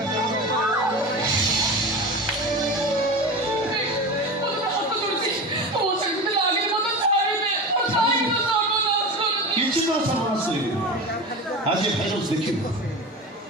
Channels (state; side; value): normal; both; correlation 0.27